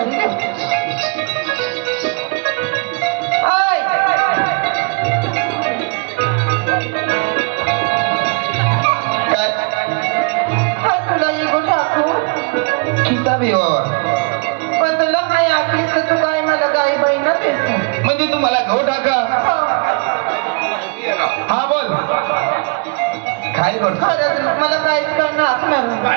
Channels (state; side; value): quieter; left; 32.9 dB